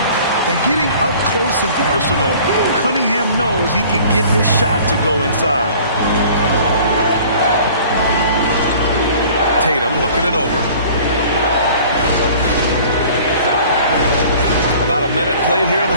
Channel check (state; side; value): inverted; both; correlation -0.48